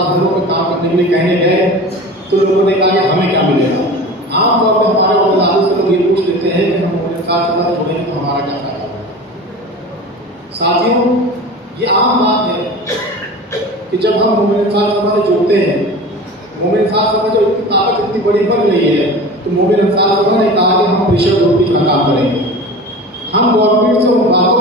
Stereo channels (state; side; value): normal; both; correlation 0.35